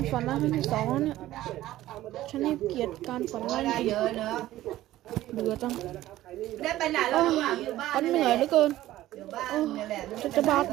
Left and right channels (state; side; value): quieter; left; 14.9 dB